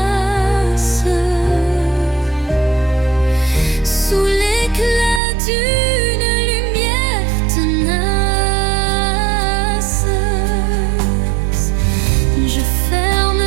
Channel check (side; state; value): left; drops out; at 5.2 s